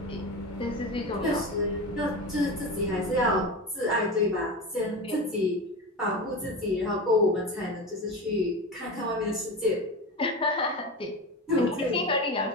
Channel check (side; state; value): both; normal; correlation 0.24